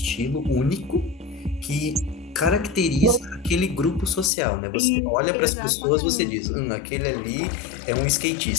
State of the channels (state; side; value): drops out; right; at 4.3 s